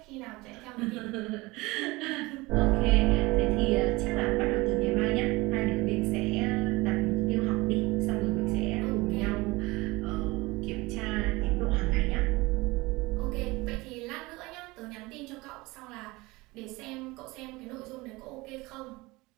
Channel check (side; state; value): left; quieter; 22.3 dB